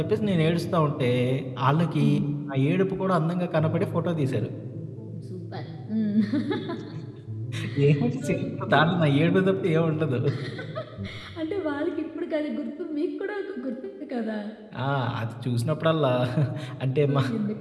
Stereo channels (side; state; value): both; identical; correlation 1.00